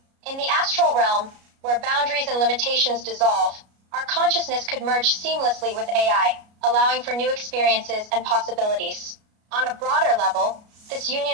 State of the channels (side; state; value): left; late; 33 ms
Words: In the astral realm, where boundaries and limitations dissolve, our consciousness could merge seamlessly with AI, allowing for new experiences and possibilities. On a broader level, this